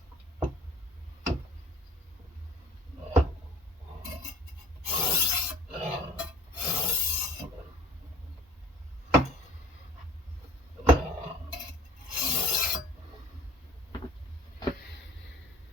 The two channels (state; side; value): normal; both; correlation 0.48